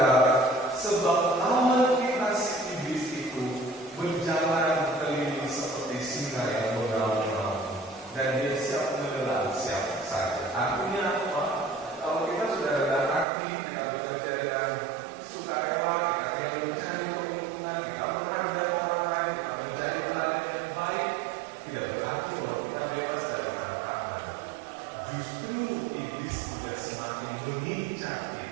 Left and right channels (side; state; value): left; drops out; at 13.2 s